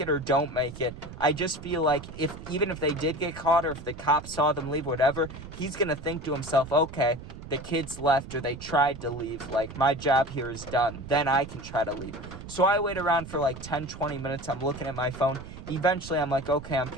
it or don't make it, I just feel like even if they did get caught or if the cops saw them leave, whatever, he's going to think to himself, okay, the kids left or they tried to leave, like, my job here is done. Then I can try to leave. So I wait around for like 10, 20 minutes. I'm looking at my phone. Eventually, I'm like, okay, I'm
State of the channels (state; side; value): noise; right; rumble, 13 dB below the sound